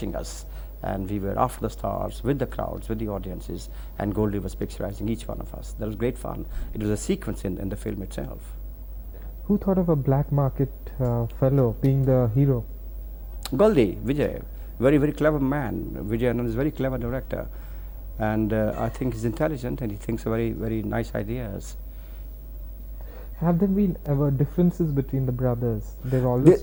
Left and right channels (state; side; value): identical; both; correlation 1.00